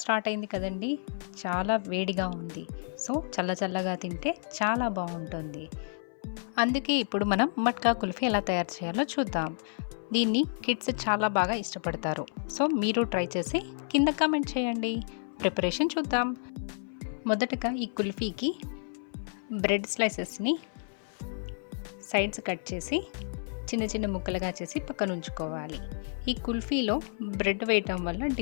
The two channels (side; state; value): right; silent; 56 dB below the other